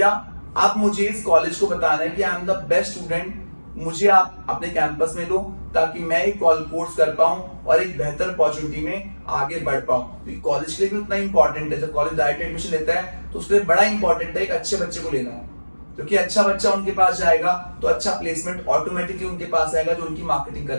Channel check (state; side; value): inverted; both; correlation -1.00